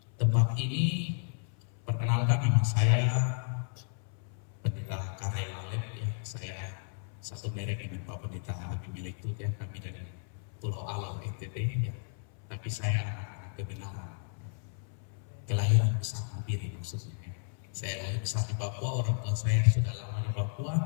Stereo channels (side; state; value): right; silent; 56 dB below the other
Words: tempat ini. Perkenalkan, nama saya Pendeta Karel Alep, ya. Saya satu merek dengan Pak Pendeta Habib milik itu, ya. Kami dari Pulau Alam NTT, ya. Tapi saya kebenaran kelahiran besar Mabiri maksudnya. Saya lahir besar di Papua, orang tua saya sudah lama di Papua,